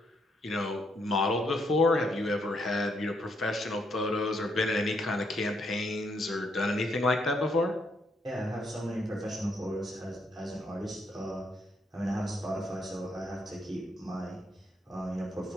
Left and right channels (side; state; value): both; normal; correlation 0.75